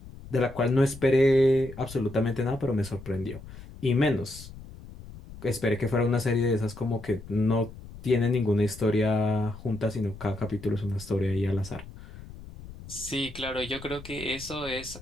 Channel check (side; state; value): left; noise; rumble, 16 dB below the sound